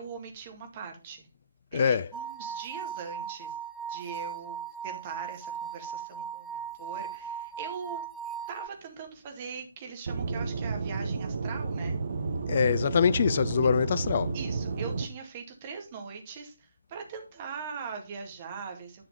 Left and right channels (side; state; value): both; inverted; correlation -0.66